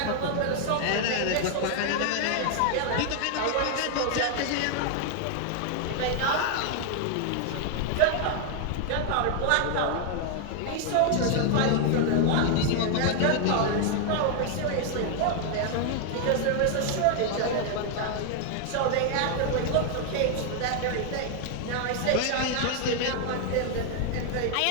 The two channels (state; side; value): different; both; correlation 0.00